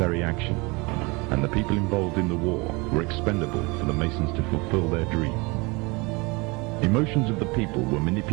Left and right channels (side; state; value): left; quieter; 26.8 dB